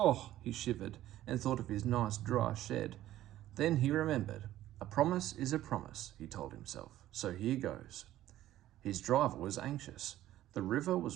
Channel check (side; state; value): left; quieter; 13.8 dB